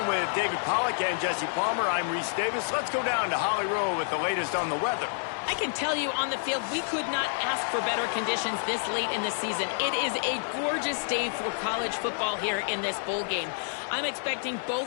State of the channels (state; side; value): silent; right; digital silence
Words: with David Pollack and Jesse Palmer, I'm Reese Davis. Let's go down to Holly Rowe with the latest on the weather. I can tell you on the field, we could not ask for better conditions this late in the season. It is a gorgeous day for college football here in this bowl game. I'm expecting